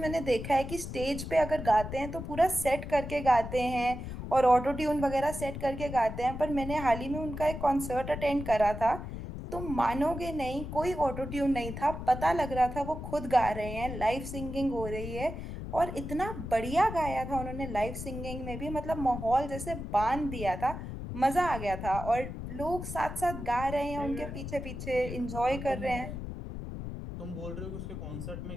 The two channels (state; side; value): noise; left; rumble, 7 dB below the sound